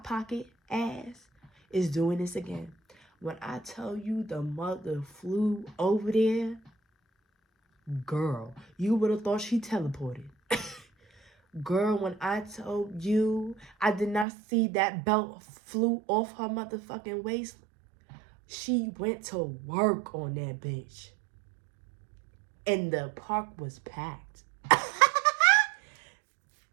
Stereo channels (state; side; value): drops out; left; at 14.2 s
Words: pocket ass is doing this again. When I tell you the mother flew over there, girl, you would have thought she teleported. Girl, when I told you I did not see that belt flew off her motherfucking waist, she went to work on that bitch. And the park was packed.